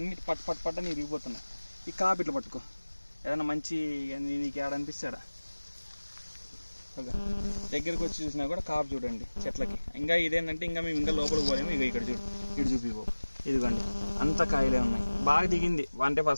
పట్ట నీ ఇరిగిపోతున్నాయి. ఈ కాపు ఇట్లా పట్టుకో, ఏదైనా మంచి నీకు ఏడనిపిస్తాడా దగ్గరకు వచ్చి చూసినా కూడా కాపు చూడండి చెట్లకి. ఇంకా ఇదేంటంటే ఇంకా మేము ఇంకా లోపలికి పోలేము. ఇక ఇక్కడ చూపిపో, ఇదిగోండి అంత కాయలే ఉన్నాయి. బాగా దిగింది అంటే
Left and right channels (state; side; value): inverted; both; correlation -1.00